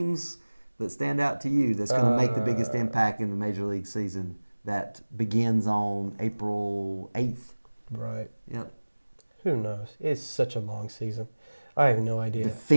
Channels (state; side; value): inverted; both; correlation -1.00